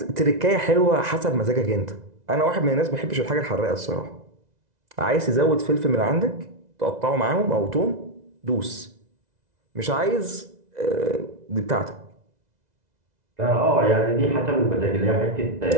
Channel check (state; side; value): late; left; 2.0 ms